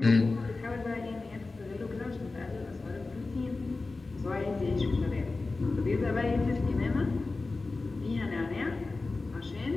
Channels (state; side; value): quieter; right; 3.6 dB